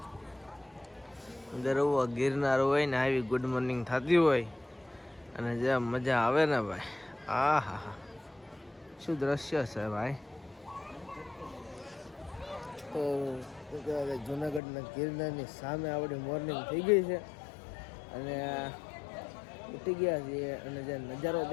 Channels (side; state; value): right; drops out; at 14.6 s